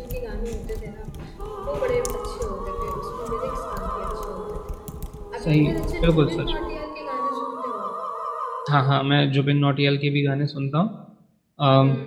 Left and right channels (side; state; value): both; identical; correlation 1.00